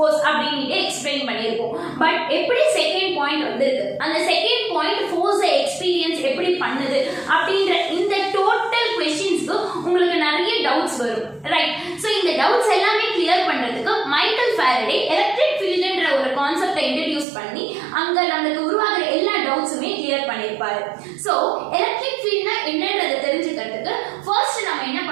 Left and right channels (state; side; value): drops out; left; at 17.2 s